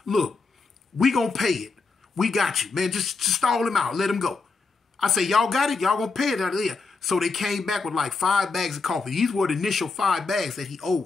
Look, we gonna pay it. We got you, man. Just stall him out. Let him go. I say, y'all got it? Y'all gonna pay it out of there. So they came back with like 5 bags of coffee. These were the initial 5 bags that he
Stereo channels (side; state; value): right; quieter; 4.3 dB